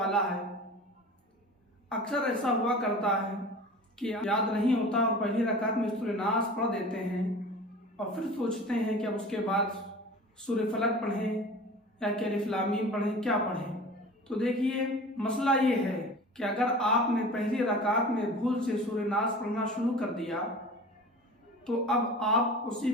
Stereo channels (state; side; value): normal; both; correlation 0.38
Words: ہے۔ اکثر ایسا ہوا کرتا ہے کہ یاد نہیں ہوتا اور پہلی رکعت میں سورہ ناس پڑھ دیتے ہیں اور پھر سوچتے ہیں کہ اب اس کے بعد سورہ فلق پڑھیں یا کہ الف لام میم پڑھیں، کیا پڑھیں؟ تو دیکھیے، مسئلہ یہ ہے کہ اگر آپ نے پہلی رکعت میں بھول سے سورہ ناس پڑھنا شروع کر دیا تو اب آپ اسی